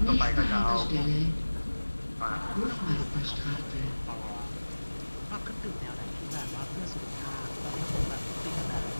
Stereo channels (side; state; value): both; inverted; correlation -1.00